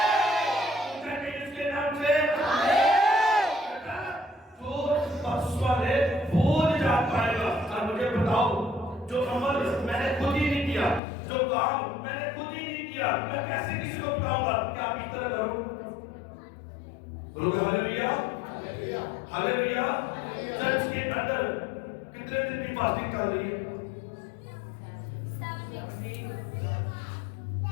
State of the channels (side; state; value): right; drops out; at 11.0 s